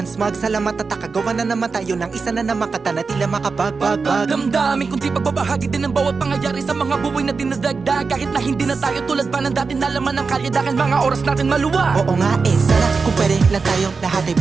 Smug. Salamat at nakagawa na naman tayo ng isa na naman kata na tila makabagbag. Damdamin kundi pagbabahagi din ng bawat pangyayari sa mga buhay na dinadagdag. Kahit na hindi na tayo tulad pa ng dati na laman ng kalye, dahil mga oras natin maluwa. Oo nga sana kung pwede lang tayong lahat ay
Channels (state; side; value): quieter; left; 4.7 dB